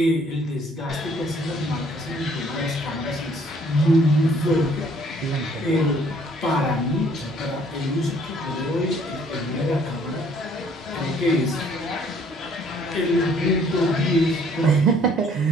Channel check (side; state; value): both; normal; correlation 0.61